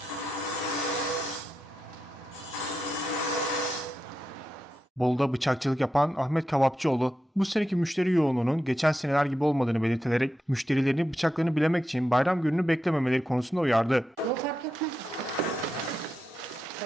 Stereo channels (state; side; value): normal; both; correlation 0.88